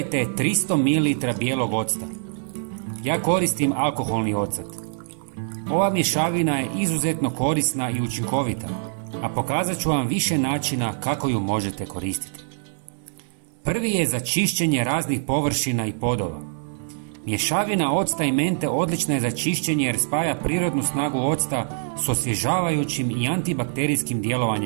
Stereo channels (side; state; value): left; silent; digital silence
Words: 300 ml bijelog octa. Ja koristim alkoholni ocat. Ova mješavina je izuzetno korisna i učinkovita, a pokazat ću vam više načina kako ju možete koristiti. Prvi je za čišćenje raznih površina i podova. Mješavina octa i mente odlična je za čišćenje jer spaja prirodnu snagu octa s osvježavajućim i antibakterijskim